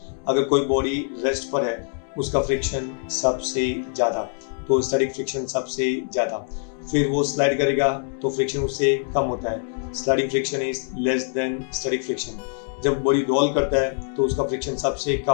अगर कोई body rest पर है उसका फ्रिक्शन सबसे ज्यादा, तो स्टैटिक फ्रिक्शन सबसे ज्यादा. फिर वो स्लाइड करेगा तो फ्रिक्शन उससे कम होता है. Sliding friction is less than static friction. जब बॉडी रोल करता है तो उसका फ्रिक्शन सबसे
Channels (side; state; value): right; silent; 56 dB below the other